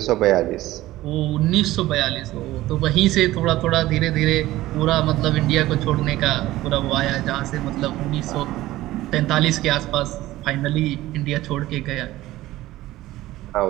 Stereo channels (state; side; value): quieter; left; 16.4 dB